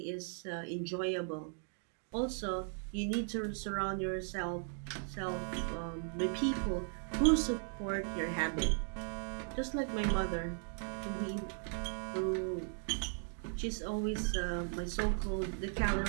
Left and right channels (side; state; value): left; silent; 53 dB below the other